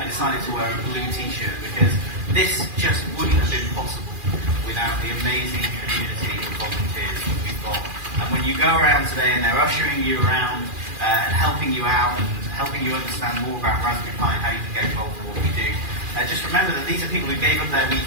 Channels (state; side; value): late; left; 2.4 ms